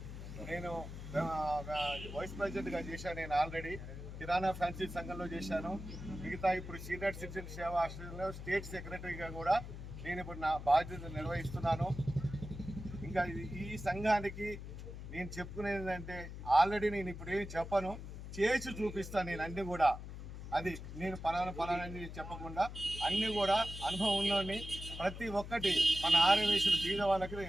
నేను వైస్ ప్రెసిడెంట్గా చేశాను. నేను ఆల్రెడీ కిరాణా ఫ్యాన్సీ సంఘంలో చేశాను. మిగతా ఇప్పుడు సీనియర్ సిటిజన్ సేవా ఆశ్రయంలో స్టేట్ సెక్రటరీగా కూడా నేను ఇప్పుడు నా బాధ్యత నిర్వహిస్తున్నాను. ఇంకా ఈ సంఘానికి నేను చెప్పుకునేది ఏంటంటే ఆల్రెడీ నేను ఇప్పుడు ఏమి చెప్పను, చేసి చూపిస్తాను. నేను అన్నీ కూడా అది నేను పలానని చెప్పకుండా అన్నీ కూడా అనుభవం ఉన్నోడిని. ప్రతి ఒక్కటి మన ఆర్యవైశ్యులు బీద వాళ్ళకి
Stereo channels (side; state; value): left; noise; hum, 10 dB below the sound